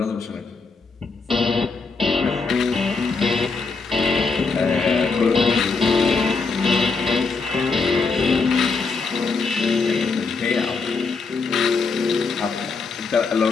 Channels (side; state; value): right; quieter; 4.5 dB